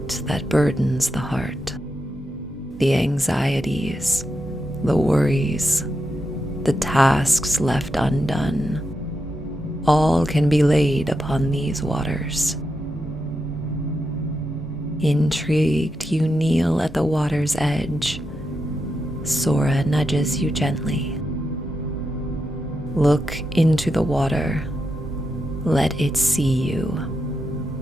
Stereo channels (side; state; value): both; normal; correlation 0.86